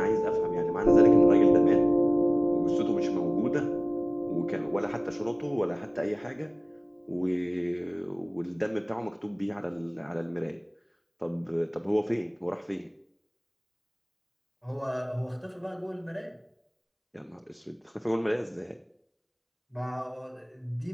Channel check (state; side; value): identical; both; correlation 1.00